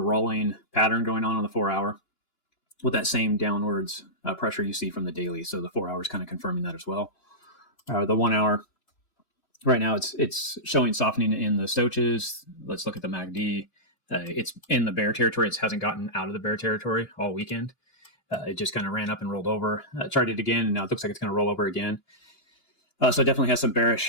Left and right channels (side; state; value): right; late; 2.9 ms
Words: pattern going on the 4 hour with that same downwards pressure you see from the daily. So the 4 hours kind of confirming that as well. The 1 hour, right now it's showing softening in the stochastics. Let's look at the MACD. It's in the bear territory. It hasn't gotten out of the bear territory all weekend. It just kind of ran up and rolled over. Tried it again, and now it looks like it's going to roll over again. So it definitely has some